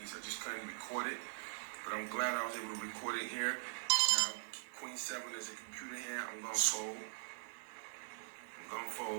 I just couldn't record it, but I'm glad I was able to record it here. Now, Queen 7 is a computer hand. I'm gonna fold.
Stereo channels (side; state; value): left; silent; digital silence